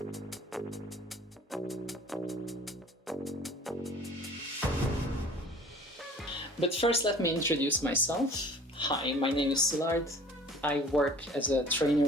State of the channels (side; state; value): both; normal; correlation 0.47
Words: But first, let me introduce myself. Hi, my name is Szilard. I work as a